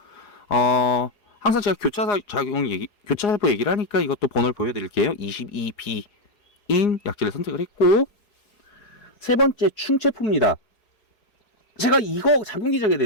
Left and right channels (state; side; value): late; right; 4.8 ms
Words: 항상 제가 교차살포 얘기를 하니까 이것도 번호를 보여드릴게요. 22B인 약제를 선택을 했고, 세 번째, 충체포입니다. 제가 이거 작용기적에